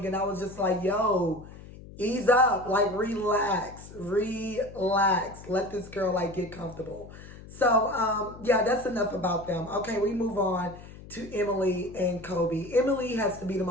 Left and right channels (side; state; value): left; noise; hum, 17 dB below the sound